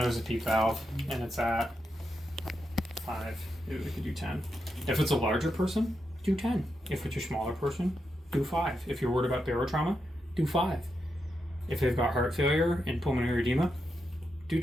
a PEEP valve, and it's at 5. Maybe we could do 10. If it's a larger person, do 10. If it's a smaller person, do 5. If you're worried about barotrauma, do 5. If they've got heart failure and pulmonary edema, do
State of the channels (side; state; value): both; normal; correlation 0.85